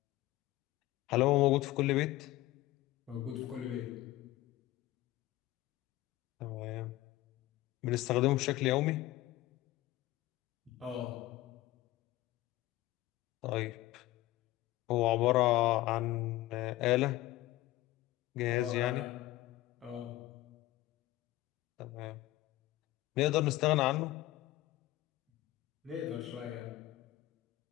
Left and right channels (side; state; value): right; quieter; 16.8 dB